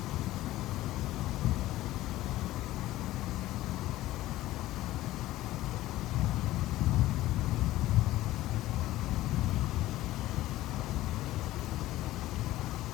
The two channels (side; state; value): right; quieter; 16.0 dB